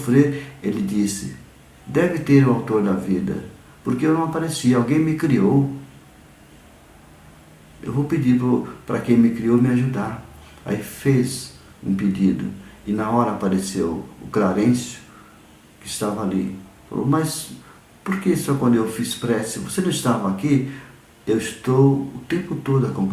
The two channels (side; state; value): both; identical; correlation 1.00